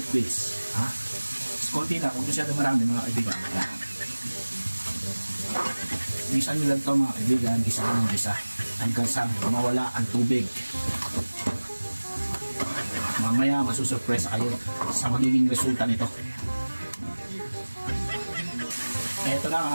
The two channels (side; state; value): both; inverted; correlation -1.00